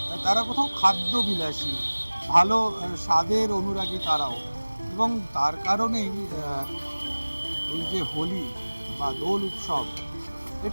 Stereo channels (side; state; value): both; inverted; correlation -1.00